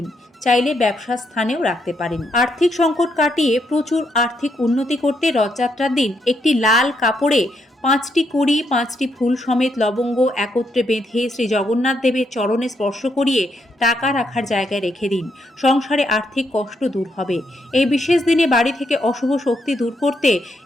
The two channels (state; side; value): normal; both; correlation 0.77